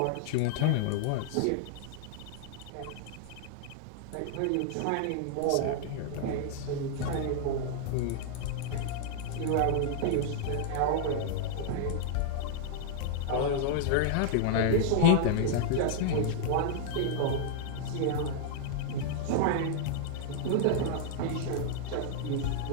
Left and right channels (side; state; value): both; different; correlation -0.01